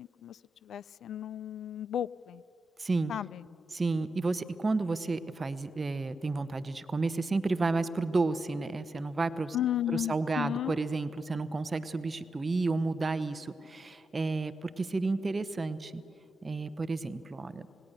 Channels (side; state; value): both; normal; correlation 0.87